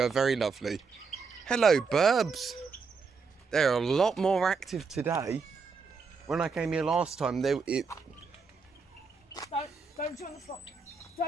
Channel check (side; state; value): left; quieter; 5.0 dB